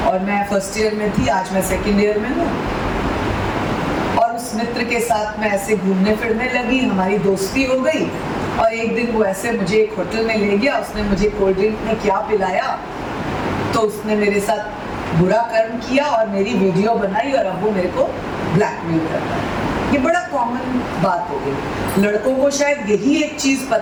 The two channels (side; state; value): both; identical; correlation 1.00